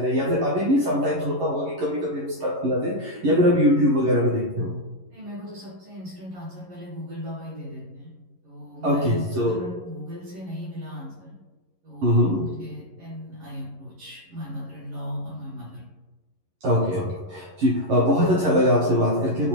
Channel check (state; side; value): late; left; 11 ms